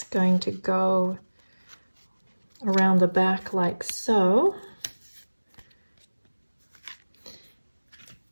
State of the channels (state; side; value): inverted; both; correlation -1.00